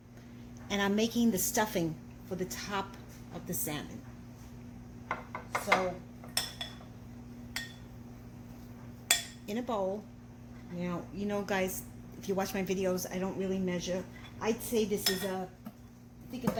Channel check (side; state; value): both; identical; correlation 1.00